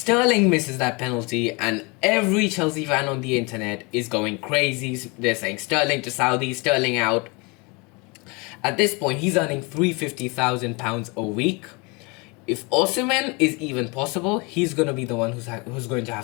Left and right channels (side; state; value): right; quieter; 28.7 dB